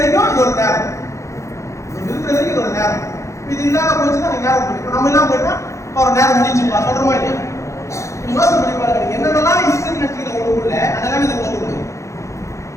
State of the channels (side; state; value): right; late; 0.14 ms